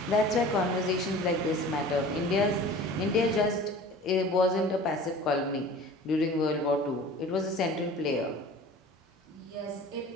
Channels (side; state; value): both; normal; correlation 0.42